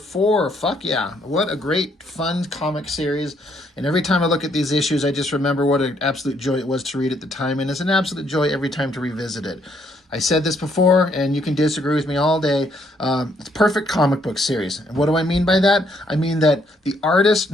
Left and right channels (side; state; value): both; normal; correlation 0.70